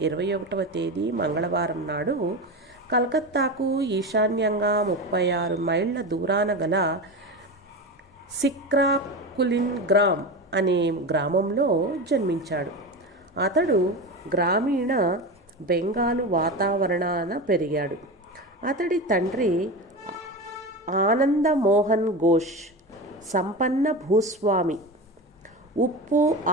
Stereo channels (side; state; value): both; normal; correlation 0.23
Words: 21వ తేదీ మంగళవారం నాడు కలకత్తాకు ఈశాన్యంగా 36 మైళ్ళ దూరాన గల సిక్రాకులిన్ గ్రామ్ అనే గ్రామంలో జన్మించాడు. అతడు గ్రామీణ బెంగాలు వాతావరణాన పెరిగాడు. అతడి తండ్రి ఆనందమోహన్ ఘోష్ సంపన్న భూస్వామి. ఉప్పు,